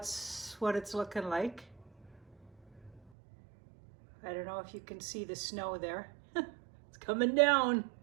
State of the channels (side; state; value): left; drops out; at 3.1 s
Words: what it's looking like. I don't know if you can see the snow there. It's coming down.